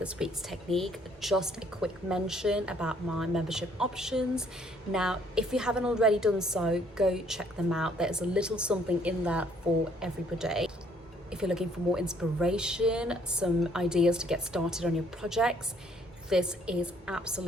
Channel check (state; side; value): normal; both; correlation 0.63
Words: week's technique, just a quick mention about my membership options. Now, if you haven't already done so, go check them out. There's a little something in there for everybody. If you're looking for more inspiration, some ideas to get started on your projects, this is